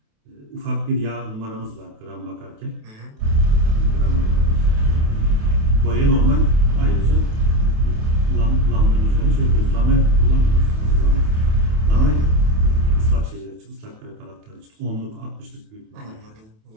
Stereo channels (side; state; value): left; late; 28 ms